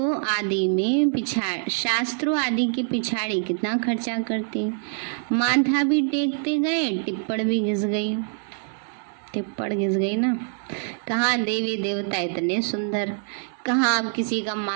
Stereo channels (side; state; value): left; silent; 60 dB below the other